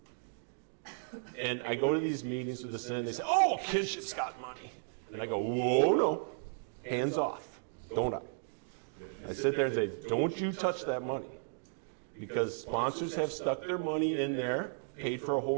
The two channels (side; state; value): left; silent; digital silence